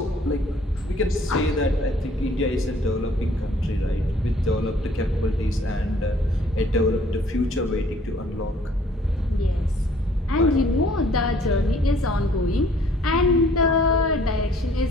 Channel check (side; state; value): both; normal; correlation 0.58